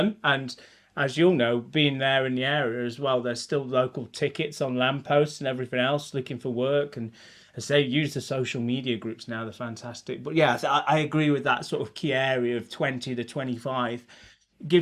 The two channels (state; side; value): identical; both; correlation 1.00